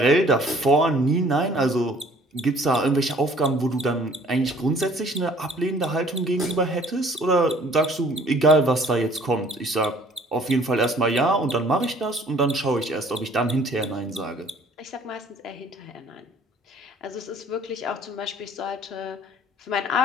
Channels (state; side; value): normal; both; correlation 0.55